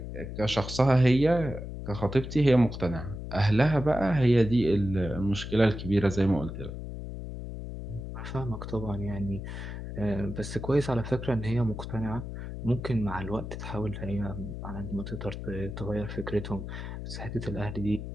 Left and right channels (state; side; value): noise; left; hum, 8 dB below the sound